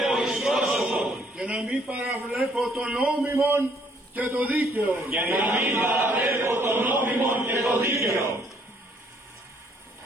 και να μην παραβλέπω το νόμιμον και το δίκαιο.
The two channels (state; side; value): normal; both; correlation 0.65